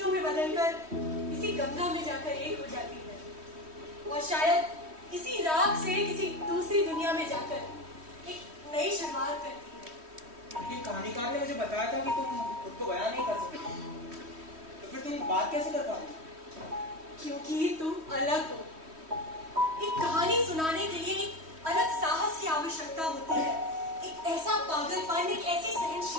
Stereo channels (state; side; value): late; left; 3.1 ms